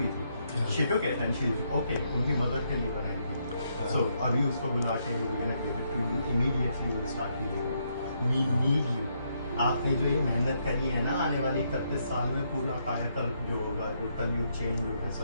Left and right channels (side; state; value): both; inverted; correlation -0.76